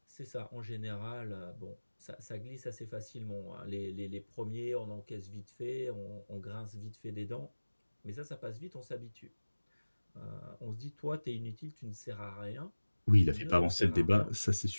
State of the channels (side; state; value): both; inverted; correlation -1.00